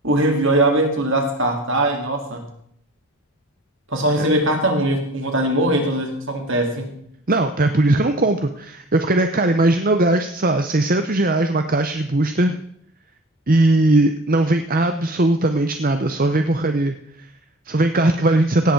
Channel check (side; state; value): both; normal; correlation 0.44